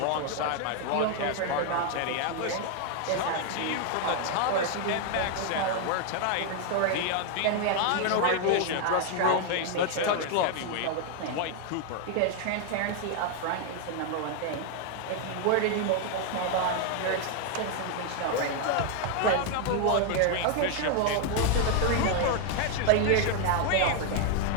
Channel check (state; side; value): different; both; correlation 0.00